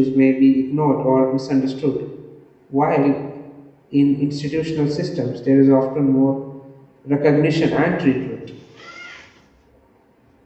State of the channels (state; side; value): identical; both; correlation 1.00